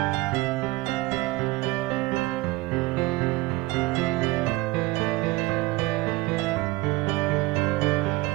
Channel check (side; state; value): left; quieter; 20.9 dB